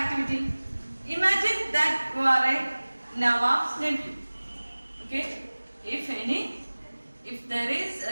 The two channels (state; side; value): inverted; both; correlation -1.00